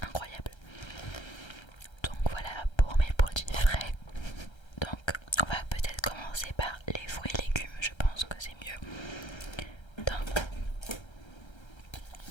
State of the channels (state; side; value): late; right; 1.3 ms